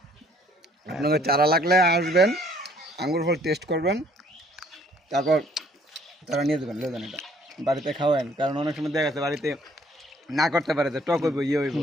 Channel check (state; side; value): normal; both; correlation 0.60